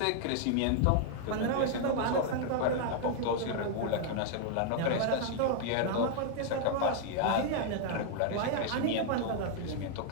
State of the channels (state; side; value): different; both; correlation 0.00